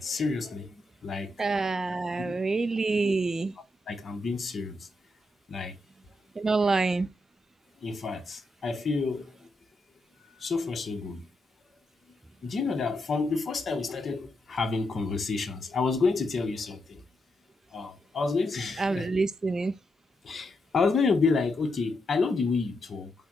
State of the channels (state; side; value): normal; both; correlation 0.83